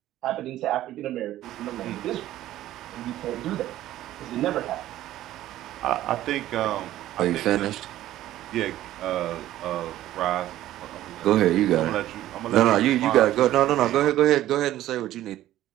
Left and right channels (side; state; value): left; quieter; 14.0 dB